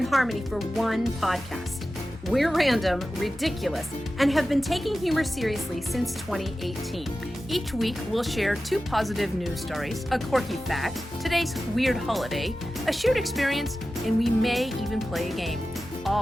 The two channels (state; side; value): normal; both; correlation 0.94